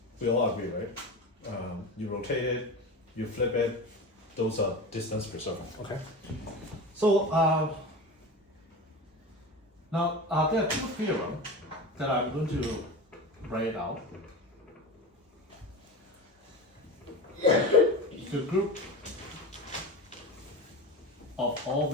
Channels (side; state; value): both; normal; correlation 0.28